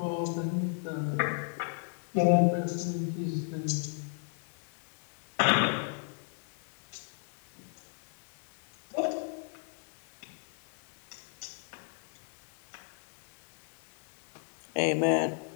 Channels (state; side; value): silent; right; 55 dB below the other